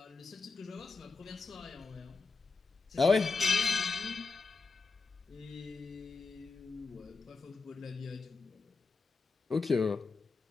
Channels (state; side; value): quieter; right; 4.3 dB